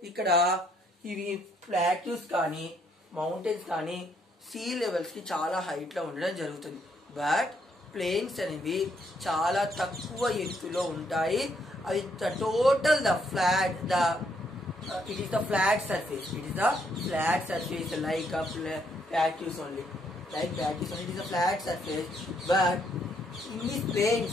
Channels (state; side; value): normal; both; correlation 0.72